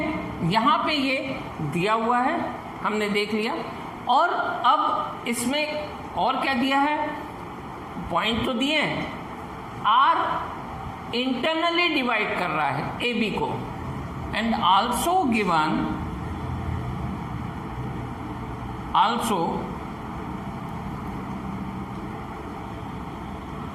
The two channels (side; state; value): both; identical; correlation 1.00